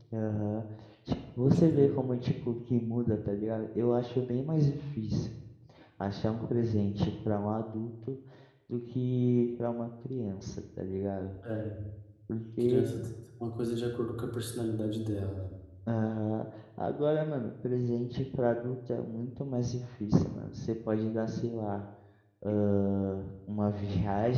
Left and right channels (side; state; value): both; identical; correlation 1.00